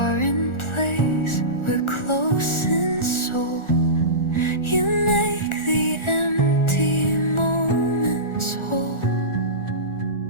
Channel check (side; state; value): right; late; 1.4 ms